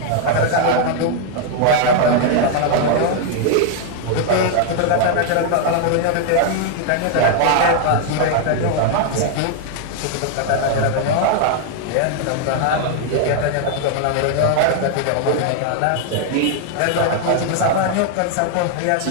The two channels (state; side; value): different; both; correlation 0.00